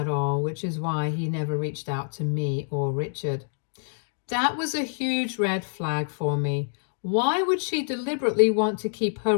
all, which is why he never reached out to me or Richard. That was a huge red flag for me. Why would she deliberately want to keep her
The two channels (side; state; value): right; silent; digital silence